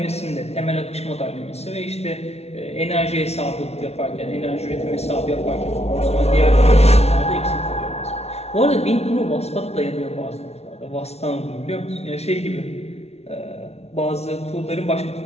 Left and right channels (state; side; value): late; right; 0.31 ms